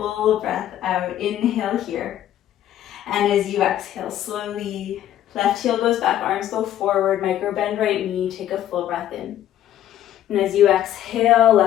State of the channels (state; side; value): quieter; right; 11.8 dB